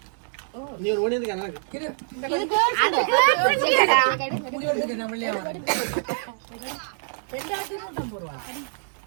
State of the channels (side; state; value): left; silent; digital silence